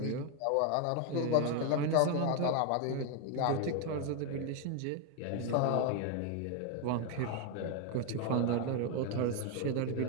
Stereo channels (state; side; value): different; both; correlation 0.01